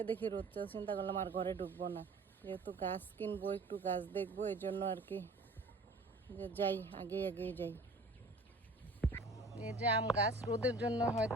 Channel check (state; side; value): quieter; left; 3.1 dB